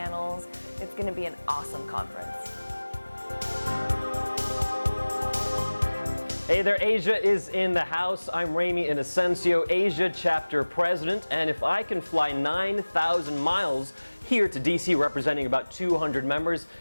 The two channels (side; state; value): both; inverted; correlation -1.00